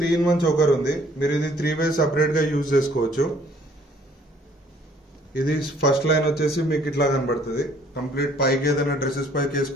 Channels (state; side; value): normal; both; correlation 0.60